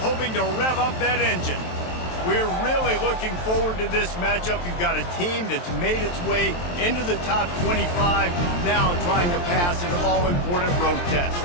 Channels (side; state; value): right; late; 23 ms